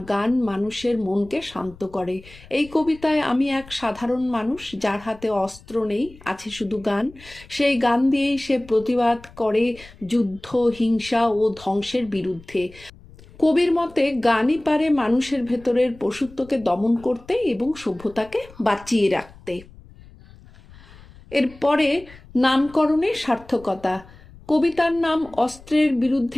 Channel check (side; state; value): left; noise; rumble, 22 dB below the sound